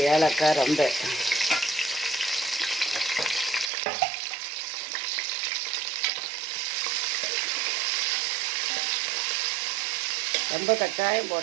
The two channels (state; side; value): drops out; left; at 3.7 s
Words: ஏலக்காய், ரம்பை. ரொம்ப கட்டாயம்